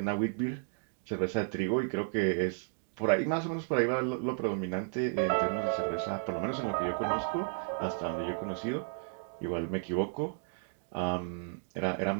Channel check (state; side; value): silent; left; digital silence